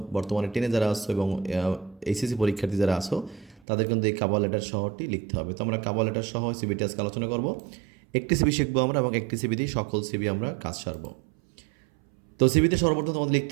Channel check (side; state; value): left; drops out; at 3.6 s